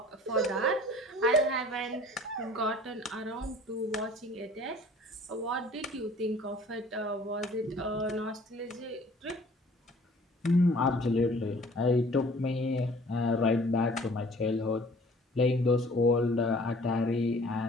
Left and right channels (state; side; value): normal; both; correlation 0.51